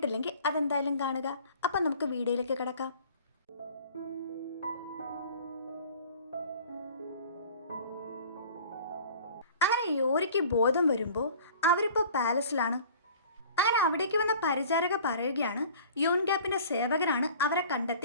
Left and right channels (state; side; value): inverted; both; correlation -0.46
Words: അതെന്തായാലും കാണുക. അപ്പം നമുക്ക് വീഡിയോയിലേക്ക് കിടക്കാം. അങ്ങനെ യോരിക്ക് ബോധം വരുമ്പോൾ അവരിപ്പോൾ പാലസിലാണ്. അങ്ങനെ അവിടേക്ക് വന്ന പരിചാരക പറയുകയാണ് യൂൻഗ്യാപ്പിൻ്റെ സേവകനാണ് അവരെ